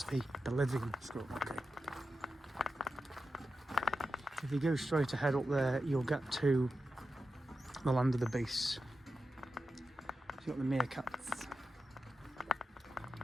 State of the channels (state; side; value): normal; both; correlation 0.91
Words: the Bolivian squirrel monkey. If you go straight ahead up there, you'll get to the land of the beasts. You've got the meerkats.